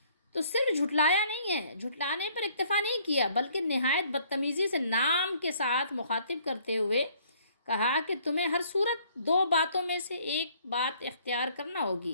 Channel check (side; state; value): both; inverted; correlation -0.61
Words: تو صرف جھٹلایا نہیں ہے، جھٹلانے پر اکتفا نہیں کیا، بلکہ نہایت بدتمیزی سے نام کے ساتھ مخاطب کرتے ہوئے کہا کہ تمہیں ہر صورت دو باتوں میں سے ایک بات اختیار کرنا